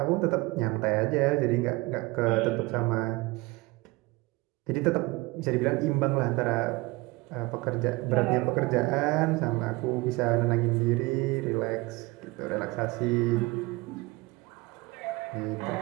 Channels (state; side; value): quieter; left; 23.1 dB